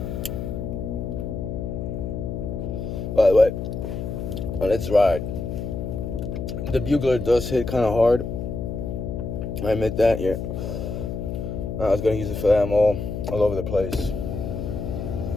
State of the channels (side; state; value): left; noise; hum, 5 dB below the sound